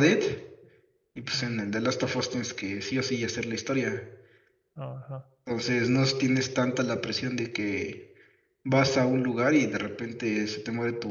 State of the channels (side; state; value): both; identical; correlation 1.00